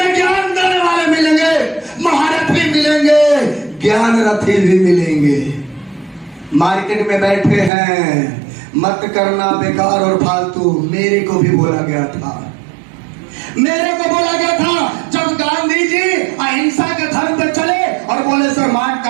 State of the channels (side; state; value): left; drops out; at 7.7 s